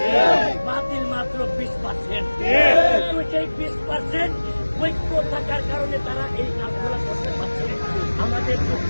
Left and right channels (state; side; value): inverted; both; correlation -1.00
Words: বাতিল মাত্র 20%। সেই 20% ঐক্য থাকার কারণে তারা এই কাজগুলো করতে পারছে। আমাদের